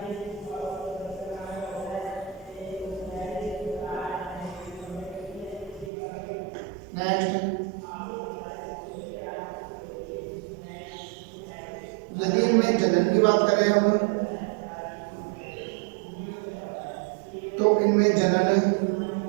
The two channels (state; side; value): drops out; left; at 5.9 s